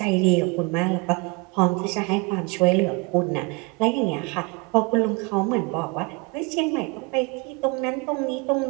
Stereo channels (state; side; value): quieter; left; 28.5 dB